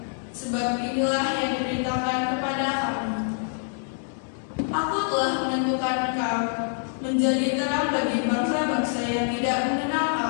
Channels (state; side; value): silent; right; 57 dB below the other